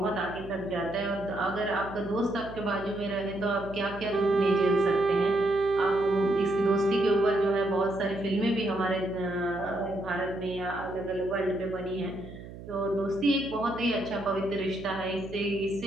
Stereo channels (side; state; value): right; noise; hum, 14 dB below the sound